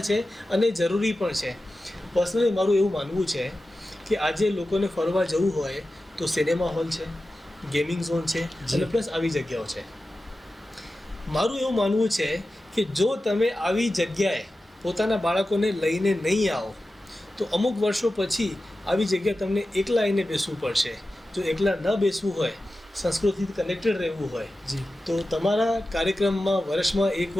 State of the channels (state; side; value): normal; both; correlation 0.94